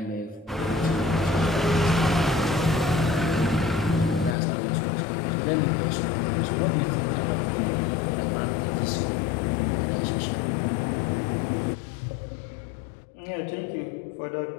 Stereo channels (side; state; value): right; drops out; at 4.4 s